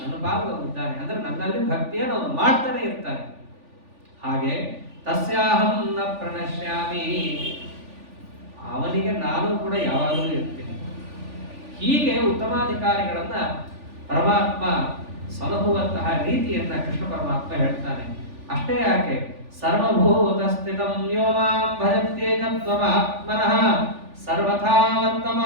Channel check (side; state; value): left; late; 3.4 ms